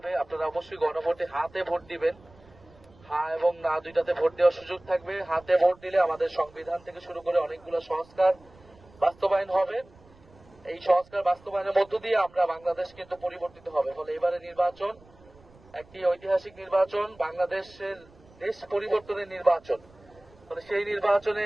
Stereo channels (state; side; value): noise; right; rumble, 26 dB below the sound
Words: আপনারা অবশ্যই গণভোটে হাতে ভোট দিবেন। হ্যাঁ এবং না দুইটাতে ভোট দেওয়ার সুযোগ থাকবে। হাতে ভোট দিলে আমাদের সংবিধান থেকে শুরু করে অনেকগুলো সংস্কার বাস্তবায়ন হবে। এই সংস্কার বাস্তবায়নের মধ্য দিয়ে আমরা বাংলাদেশ কিন্তু পরিবর্তিত হবে। ফলে এবারে নির্বাচন একটি ঐতিহাসিক নির্বাচন, বাংলাদেশের দেশ পরিবর্তনের নির্বাচন। ফলে সেই নির্বাচনে